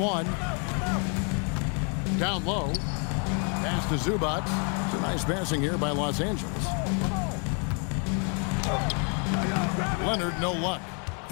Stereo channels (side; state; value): right; quieter; 38.8 dB